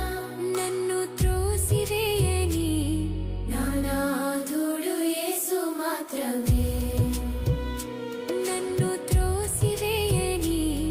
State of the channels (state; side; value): identical; both; correlation 1.00